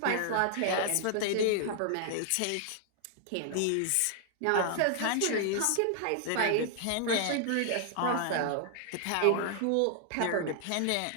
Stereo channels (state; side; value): different; both; correlation 0.00